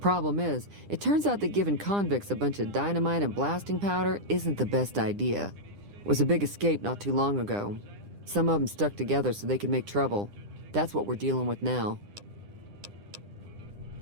is, it turns out that giving convicts a bunch of dynamite and blasting powder isn't the best idea. It was a big escape not too long ago. Some of them stuck together so they could make trouble. That's what we're dealing with now.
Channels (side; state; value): left; late; 9.9 ms